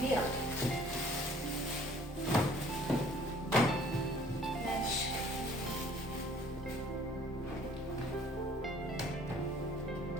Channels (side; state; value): both; normal; correlation 0.55